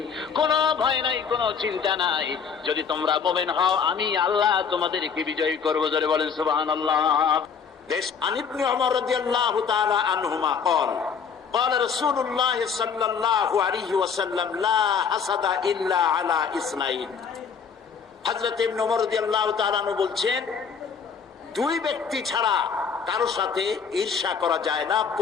কোনো ভয় নাই, কোনো চিন্তা নাই, যদি তোমরা মুমিন হও আমি আল্লাহ তোমাদেরকে বিজয়ী করব। জোরে বলেন সুবহানাল্লাহ। عن ابن عمر رضي الله تعالى عنهما قال قال رسول الله صلى الله عليه وسلم لا حسد إلا على اثنين। হযরত ইবনে ওমর রাদিয়াল্লাহু তাআলা আনহু বলছেন, দুই ব্যক্তি ছাড়া কারো সাথে ঈর্ষা করা যায় না,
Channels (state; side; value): quieter; right; 6.4 dB